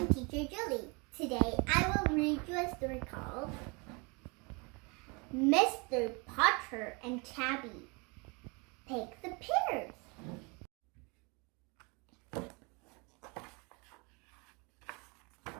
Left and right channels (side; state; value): left; quieter; 30.2 dB